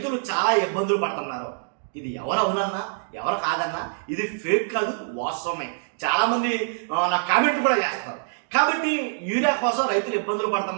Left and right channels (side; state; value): left; silent; digital silence